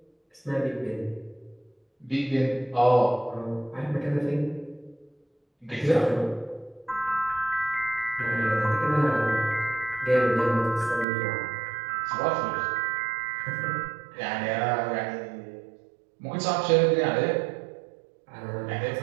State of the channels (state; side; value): drops out; left; at 11.1 s